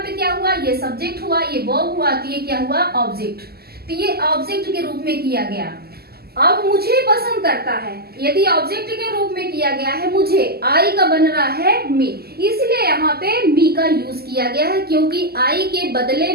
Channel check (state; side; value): late; left; 0.46 ms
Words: क्या हुआ? ये सब्जेक्ट हुआ, ये वर्ब हुआ, तो ये क्या हुआ? ऑब्जेक्ट। तो ये ऑब्जेक्ट के रूप में किया गया। अब मुझे पसंद करता है, यदि ऑब्जेक्ट के रूप में किया गया है मुझे, आई का बन रहा है मी, इसलिए यहाँ पे मी का यूज किया गया है, क्योंकि आई के बदले